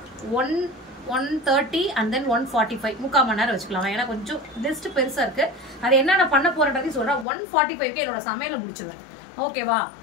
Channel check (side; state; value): right; drops out; at 7.2 s